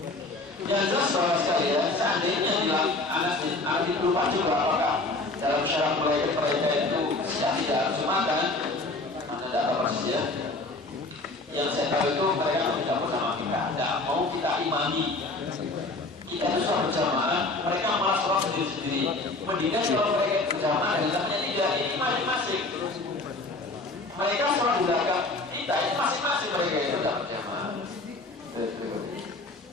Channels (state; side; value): quieter; right; 3.1 dB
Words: Yang jelas bahwa sekalian seandainya anak lupa juga apakah dalam syarat mulai mereka itu tidak harus Jumatan, anda tidak tahu persis ya. Yang saya tahu itu mereka tidak bersama kita, tidak mau kita imami. Kita itu sholat berjamaah, mereka malah sholat sendiri-sendiri. Mendingan kalau mereka berjamaah dengan temannya tidak, ini masing-masing. Mereka sholat di belakang kita, ini masing-masing mereka itu tidak berjamaah.